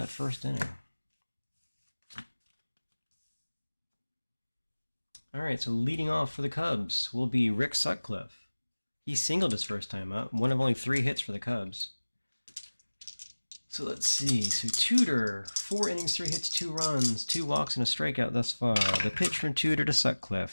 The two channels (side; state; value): both; inverted; correlation -1.00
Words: first inning. All right, so leading off for the Cubs will be Rick Sutcliffe. He singled his first time up, one of only 3 hits for the Cubs. So let's see. So Tudor, 4 innings, 3 hits, 2 runs, 2 walks, and a strikeout thus far. The pitch from Tudor to Sutcliffe,